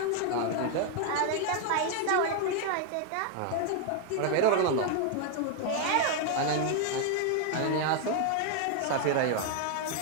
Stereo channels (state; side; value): different; both; correlation 0.00